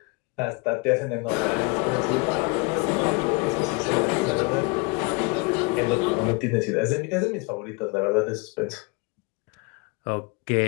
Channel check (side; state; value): right; quieter; 29.0 dB